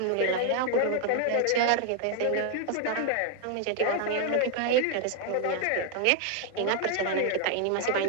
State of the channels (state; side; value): different; both; correlation 0.00